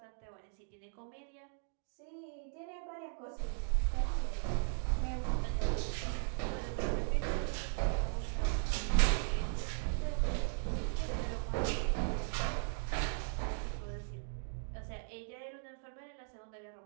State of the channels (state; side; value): silent; left; 53 dB below the other